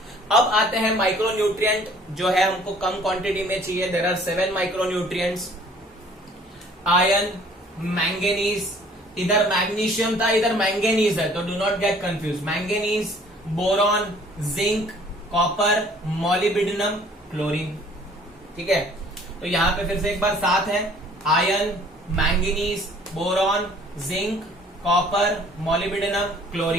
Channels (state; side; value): normal; both; correlation 0.55